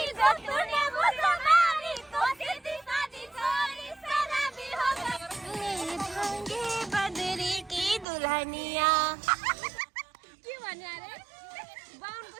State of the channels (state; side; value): drops out; left; at 8.1 s